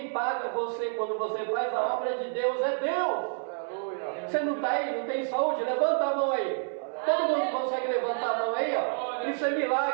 paga você quando você faz a obra de Deus é Deus. Você não está aí, não tem saúde? Levanta a mão aí. Todo mundo consegue levantar a mão aí, ó. Isso é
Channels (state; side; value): silent; left; 59 dB below the other